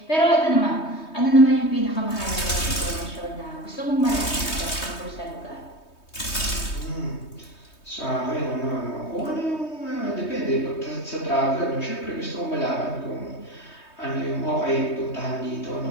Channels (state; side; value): late; right; 3.2 ms